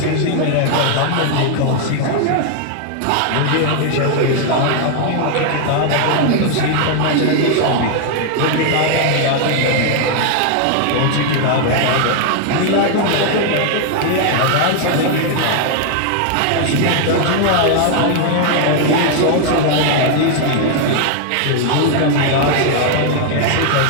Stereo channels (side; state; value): both; different; correlation 0.00